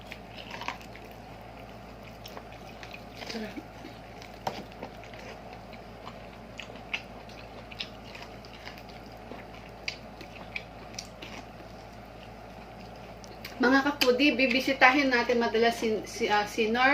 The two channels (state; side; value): identical; both; correlation 1.00